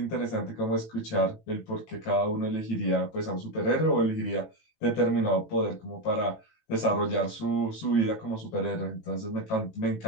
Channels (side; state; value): right; late; 18 ms